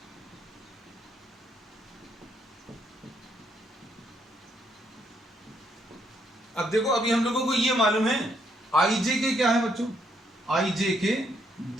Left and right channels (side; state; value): both; normal; correlation 0.72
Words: अब देखो अभी हम लोगों को ये मालूम है आई जे के क्या है बच्चों, आई जे के